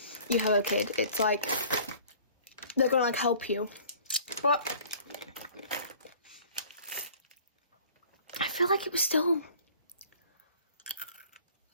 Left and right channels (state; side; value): inverted; both; correlation -0.50